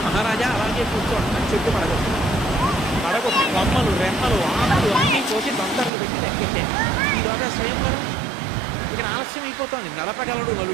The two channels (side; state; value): left; drops out; at 5.9 s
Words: మహారాజా అలాగే కూర్చోండి, చెట్టు పడగొట్టి కొమ్మలు, రెమ్మలు, ఆకులు అన్నీ కోసి దంతర్లు పెట్టి లెక్కెట్టాడు. ఈలోగా స్వయంవరం ఇక్కడ ఆలస్యం అయిపోతుంది. నడపగలడు